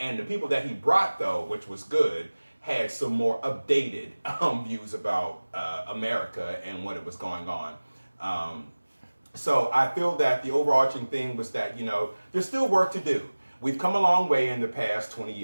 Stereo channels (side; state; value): both; inverted; correlation -1.00